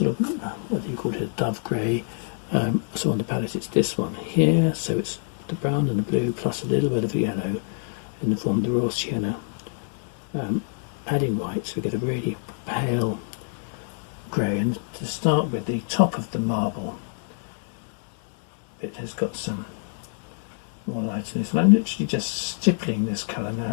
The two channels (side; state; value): right; silent; 61 dB below the other